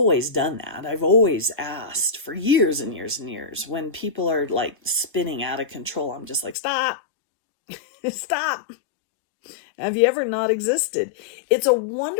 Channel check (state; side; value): drops out; right; at 6.6 s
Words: done that. I've always asked for years and years and years. When people are like spinning out of control, I'm just like, stop. Stop. Have you ever not existed? It's a